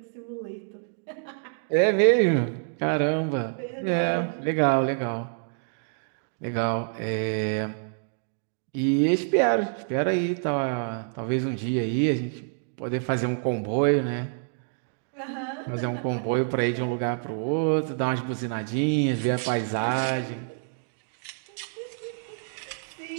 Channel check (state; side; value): silent; left; digital silence